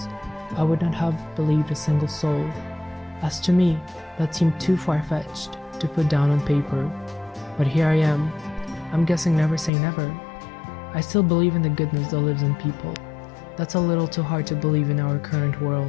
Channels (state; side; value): drops out; right; at 9.7 s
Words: I would not have believed a single soul. As to me, that seemed too far-fetched to put down on paper. But here I am. I'm guessing never say never. I still believe in the goodness that lives in people. That's a little too hard to believe in our current